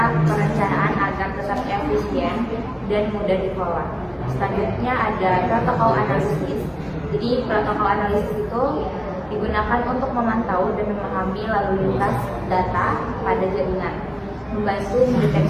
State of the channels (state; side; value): identical; both; correlation 1.00